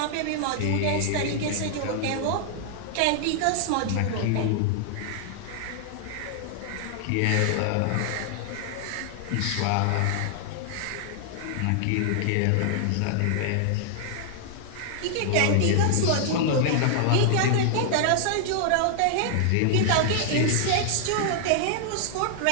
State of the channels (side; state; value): both; different; correlation 0.00